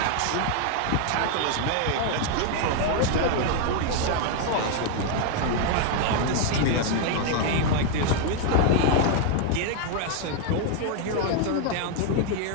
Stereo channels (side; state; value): both; different; correlation 0.00